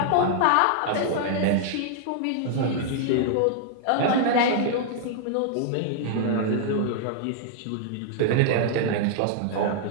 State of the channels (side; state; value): both; different; correlation -0.01